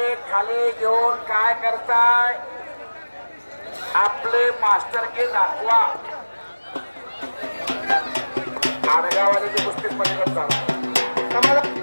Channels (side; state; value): both; inverted; correlation -1.00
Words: खाली घेऊन काय करताय आपले मास्टर के दाखवा आडगावाले कुस्ती पलीकडे